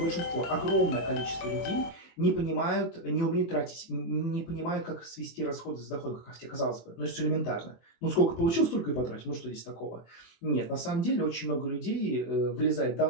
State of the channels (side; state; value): right; late; 24 ms